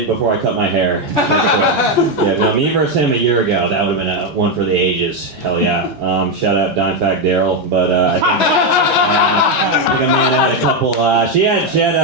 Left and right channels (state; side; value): normal; both; correlation 0.06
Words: before I cut my hair. Yeah, no, me versus him a year ago, that would have been one for the ages. Hell yeah. Shout out Dime Fact Daryl, but I think Amanda had a couple. She had